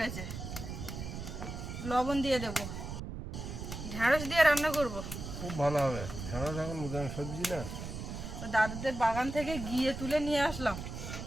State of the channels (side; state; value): right; noise; rumble, 7 dB below the sound